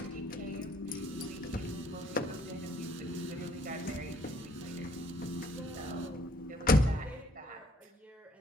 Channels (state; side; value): normal; both; correlation 0.63